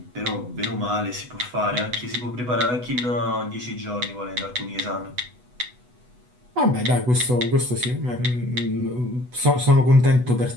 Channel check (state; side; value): late; left; 8.1 ms